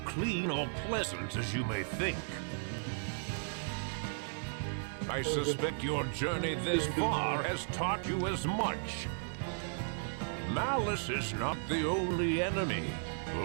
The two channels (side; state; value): left; silent; digital silence